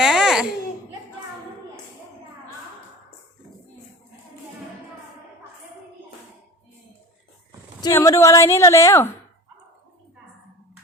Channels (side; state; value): both; normal; correlation 0.34